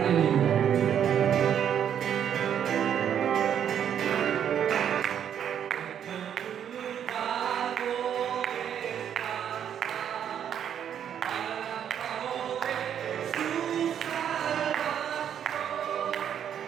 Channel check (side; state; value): left; quieter; 9.1 dB